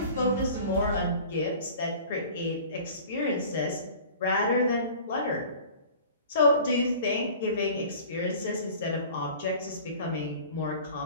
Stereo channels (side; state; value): both; inverted; correlation -0.44